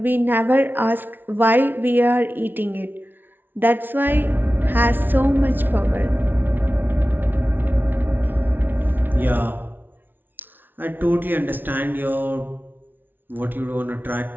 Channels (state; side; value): late; left; 0.093 ms